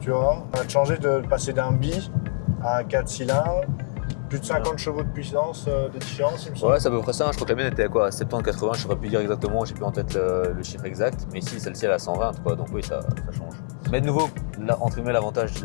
vois. On a changé de passer d'un bi à un 4 cylindres, plus de 50 chevaux de puissance de différence, il me semble. Ouais, c'est à peu près ça. Je crois que la mienne était à quoi, 70-80, je saurais plus dire exactement, j'ai plus en tête le chiffre exact. Mais ici, celle-ci, elle a 120, quoi. Donc oui, ça change. Mais de nouveau, entre guillemets, l'avantage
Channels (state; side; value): silent; right; 62 dB below the other